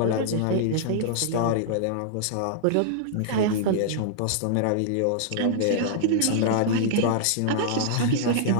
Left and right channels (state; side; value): different; both; correlation -0.01